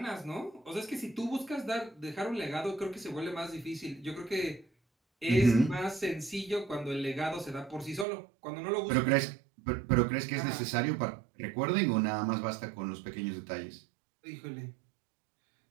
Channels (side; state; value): left; drops out; at 8.1 s